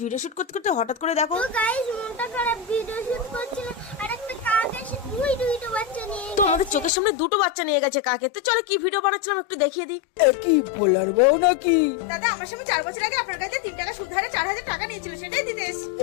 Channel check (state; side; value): drops out; right; at 6.9 s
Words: ভিডিও শুট করতে করতে হঠাৎ করে দেখো তো গাইস মনটা খারাপ, ভিডিও শুট করছিল আর একটা কাক এসে দুইটা বাচ্চা নিয়ে তো আমাদের চোখের সামনে দুটো বাচ্চা নিয়ে গেছে কাকে। তো চলো কি ভিডিও বানাচ্ছিলাম একটু দেখিয়ে দিই। কি বলার বউ নাকি? দাদা আমার সঙ্গে 4 বছর আগে আপনার কাছে 3 টাকা সুদ হারে 4000 টাকা নিয়েছিল, সেটাই দিতে এসেছি।